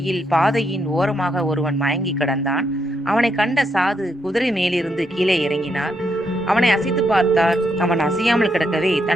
பாதையின் ஓரமாக ஒருவன் மயங்கி கிடந்தான். அவனை கண்ட சாது குதிரை மேலிருந்து கீழே இறங்கினார். அவனை அசைத்து பார்த்தார். அவன் அசையாமல் கிடக்கவே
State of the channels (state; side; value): normal; both; correlation 0.78